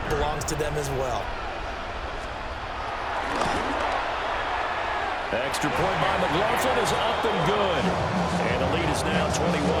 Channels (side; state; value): both; identical; correlation 1.00